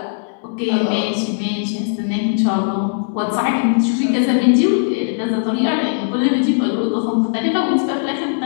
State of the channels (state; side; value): silent; right; 67 dB below the other